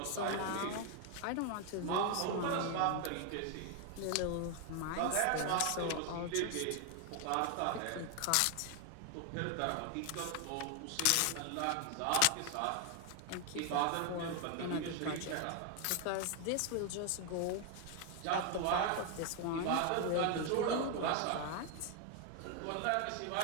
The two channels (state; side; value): different; both; correlation 0.01